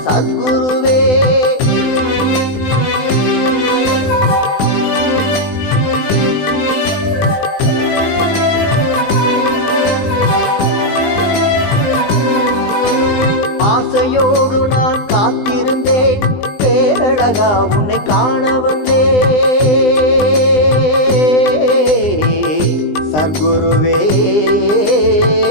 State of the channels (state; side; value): late; right; 20 ms